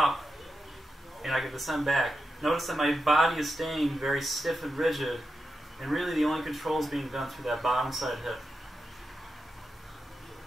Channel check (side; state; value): both; normal; correlation 0.89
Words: and I can descend back. Notice that my body is staying very stiff and rigid, and really the only control is being done through that bottom side hip.